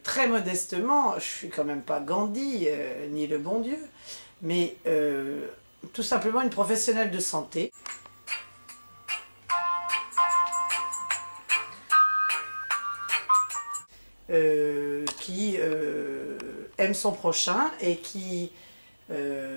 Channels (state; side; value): inverted; both; correlation -1.00